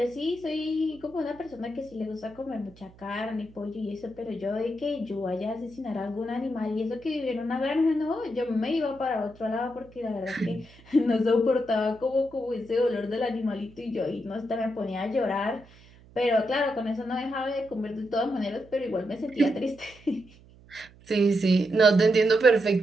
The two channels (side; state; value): right; noise; hum, 24 dB below the sound